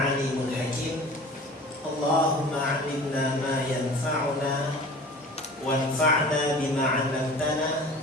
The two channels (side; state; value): both; normal; correlation 0.42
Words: hakim. Allahumma 'allimna ma yanfa'una wanfa'na bima 'allamtana